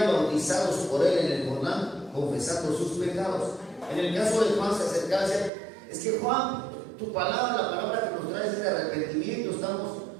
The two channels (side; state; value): left; drops out; at 5.5 s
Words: bautizados por él en el Jordán, confesando sus pecados. En el caso de Juan se acercaba y decía: es que Juan, tu palabra, la palabra que nos traes es de arrepentimiento, estamos